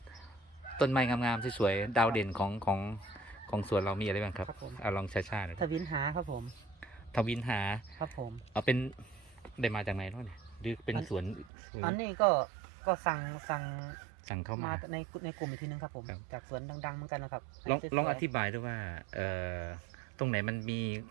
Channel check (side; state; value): left; drops out; at 11.5 s